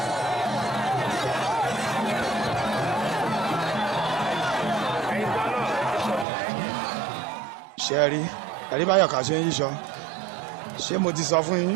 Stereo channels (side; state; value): left; drops out; at 6.2 s